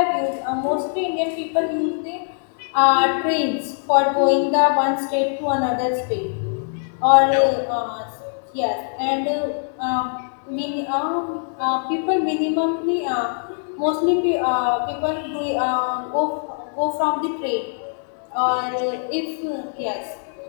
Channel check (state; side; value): silent; right; 60 dB below the other